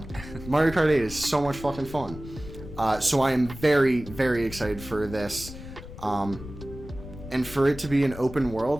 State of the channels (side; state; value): left; noise; rumble, 13 dB below the sound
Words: Mario Kart 8 is so much fucking fun. So I am very, very excited for this. And for it to be an open